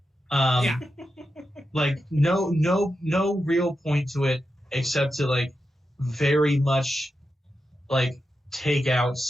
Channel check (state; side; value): normal; both; correlation 0.89